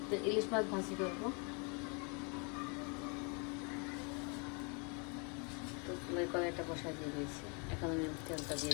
তো ইলিশ মাছ ভাজি করবো। তো ফুলের কড়াইটা বসাই দিয়ে দিয়েছি। এখন আমি তেলটা দিয়ে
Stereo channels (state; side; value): quieter; right; 34.3 dB